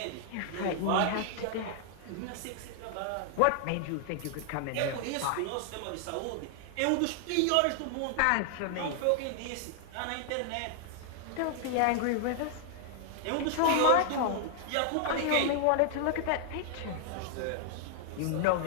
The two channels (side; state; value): both; different; correlation -0.01